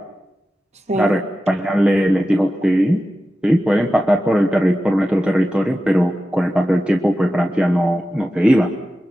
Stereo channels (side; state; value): both; normal; correlation 0.93